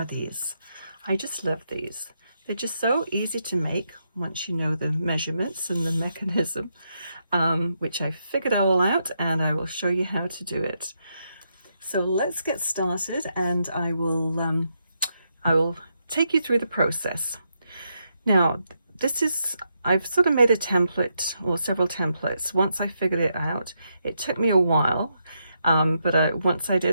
these? I just love these. They're just so easy to make once you know the measurements and the mechanism, which I figured all out and I will show you how to do it. So let's get started and I will take you through the process. Now I've sort of made a template or several templates. Once I figured it out, it took me a while, but once I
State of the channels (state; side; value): inverted; both; correlation -0.81